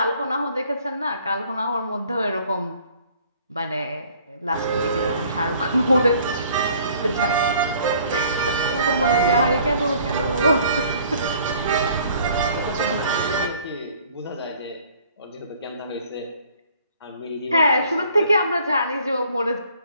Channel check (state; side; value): inverted; both; correlation -0.57